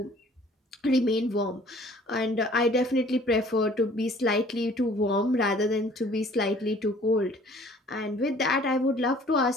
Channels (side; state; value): both; normal; correlation 0.54